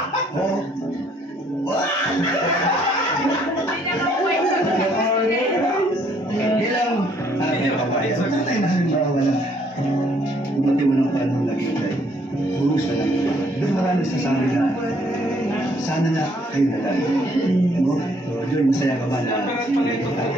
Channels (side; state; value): both; normal; correlation 0.65